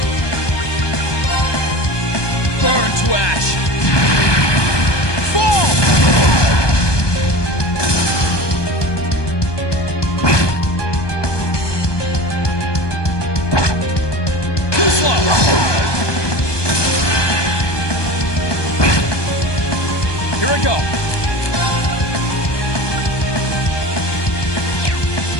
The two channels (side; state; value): right; late; 1.2 ms